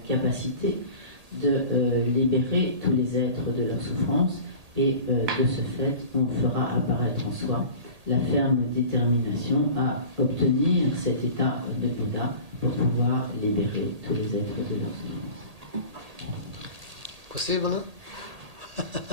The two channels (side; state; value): left; late; 1.8 ms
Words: capacité de libérer tous les êtres de leur souffrance et de ce fait, on fera apparaître en soi la ferme détermination à obtenir cet état de Bouddha pour pouvoir libérer tous les êtres de leur souffrance. Possible?